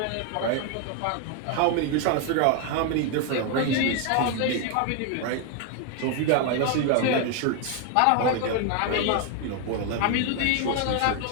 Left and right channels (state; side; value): different; both; correlation 0.01